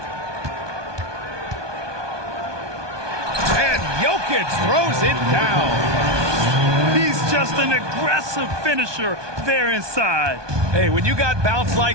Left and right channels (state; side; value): late; left; 1.2 ms